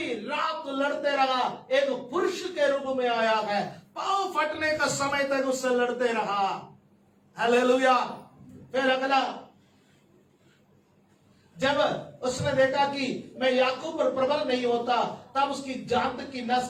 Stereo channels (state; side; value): identical; both; correlation 1.00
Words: रात लड़ते रहा। एक पुरुष के रूप में आया है, पांव फटने का समय तक उससे लड़ते रहा। हालेलुया। फिर अगला जब उसने देखा कि मैं याकूब पर प्रबल नहीं होता, तब उसकी जांद की नस